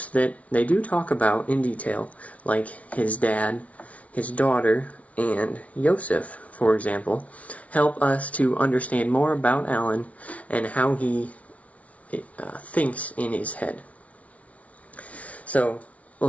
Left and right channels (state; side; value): late; right; 0.066 ms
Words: that they do talk about in detail, like his dad, his daughter, and Yosef, for example, help us to understand more about Alan and how he thinks in his head. So, we'll